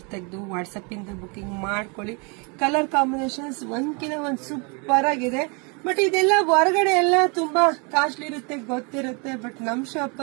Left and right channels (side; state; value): left; quieter; 33.0 dB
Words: ತೆಗೆದು ವಾಟ್ಸಪ್ ಇಂದ ಬುಕಿಂಗ್ ಮಾಡ್ಕೊಳ್ಳಿ. ಕಲರ್ ಕಾಂಬಿನೇಷನ್ಸ್ ಒಂದ್ಕಿನ ಒಂದು ಸೂಪರ್ ಆಗಿದೆ. ಬಟ್ ಇದೆಲ್ಲ ಹೊರಗಡೆ ಎಲ್ಲ ತುಂಬಾ ಕಾಸ್ಟ್ಲಿ ಇರುತ್ತೆ, ಗೊತ್ತಿರುತ್ತೆ. ಬಟ್ ನಮ್ ಶಾಪ್